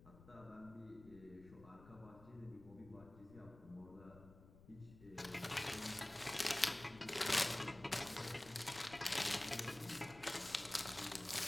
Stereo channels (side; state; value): left; noise; rumble, 20 dB below the sound